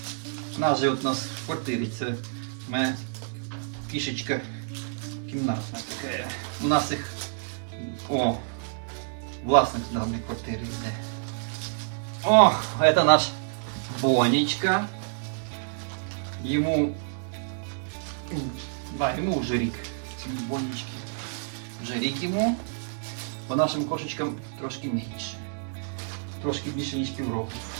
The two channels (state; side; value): silent; left; digital silence